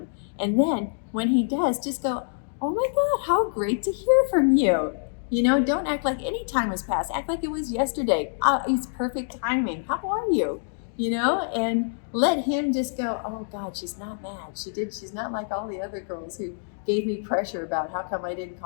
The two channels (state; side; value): silent; right; digital silence